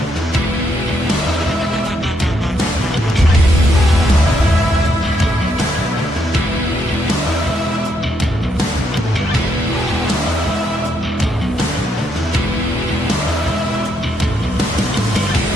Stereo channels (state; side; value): normal; both; correlation 0.76